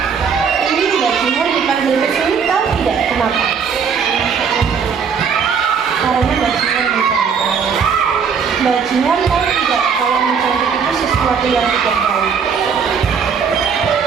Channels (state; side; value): quieter; left; 6.4 dB